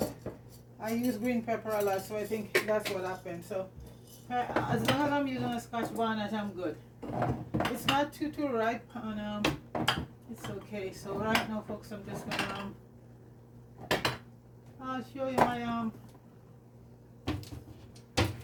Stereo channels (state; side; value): identical; both; correlation 1.00